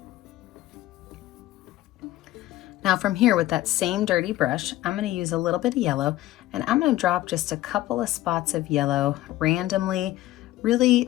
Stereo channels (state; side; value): quieter; right; 15.5 dB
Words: Now from here, with that same dirty brush, I'm going to use a little bit of yellow, and I'm going to drop just a couple of spots of yellow randomly, really